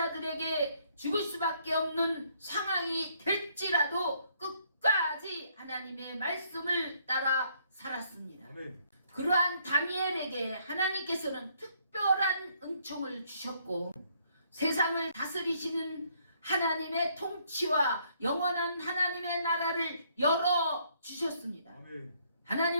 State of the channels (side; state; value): both; inverted; correlation -0.68